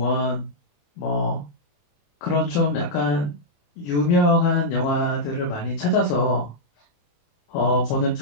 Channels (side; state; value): right; late; 28 ms